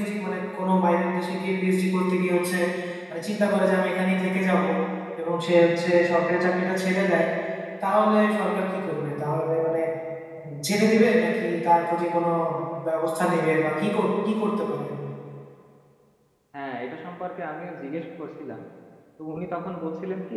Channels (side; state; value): both; identical; correlation 1.00